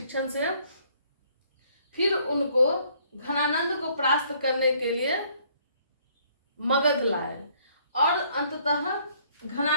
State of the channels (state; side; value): inverted; both; correlation -0.63